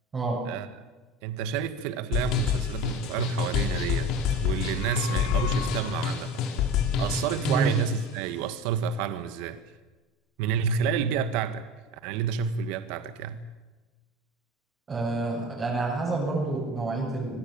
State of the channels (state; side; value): normal; both; correlation 0.33